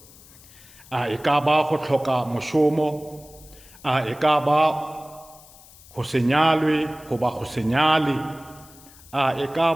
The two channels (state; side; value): noise; left; hiss, 23 dB below the sound